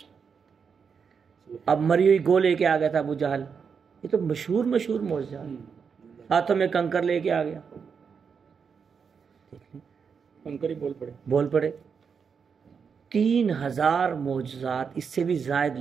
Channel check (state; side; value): quieter; left; 6.2 dB